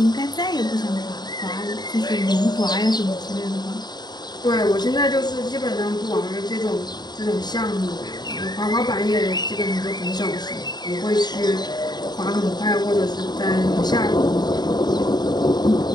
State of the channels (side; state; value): right; late; 0.20 ms